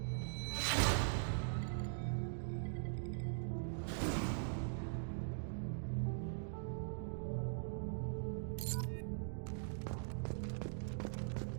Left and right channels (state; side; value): silent; left; digital silence